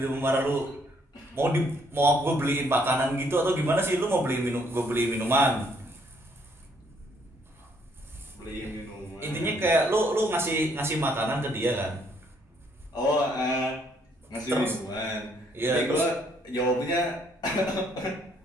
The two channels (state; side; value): normal; both; correlation 0.68